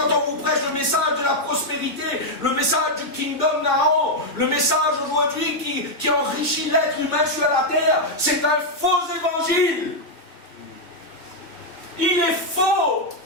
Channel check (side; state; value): right; late; 2.2 ms